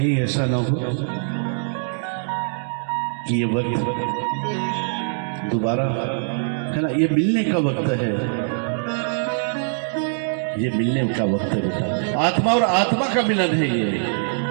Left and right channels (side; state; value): left; silent; digital silence